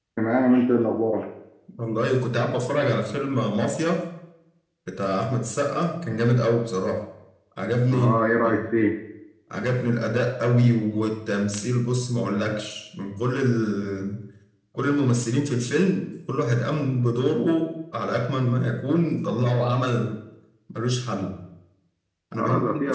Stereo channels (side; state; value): both; identical; correlation 1.00